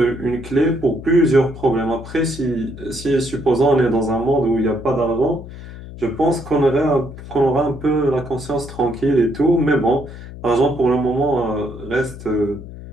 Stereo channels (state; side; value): noise; left; hum, 14 dB below the sound